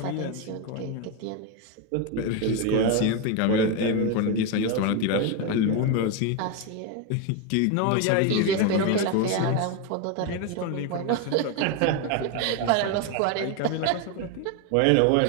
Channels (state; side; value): different; both; correlation 0.02